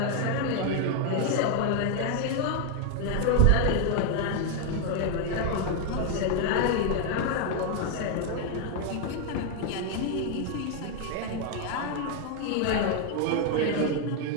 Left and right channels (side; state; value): both; different; correlation 0.00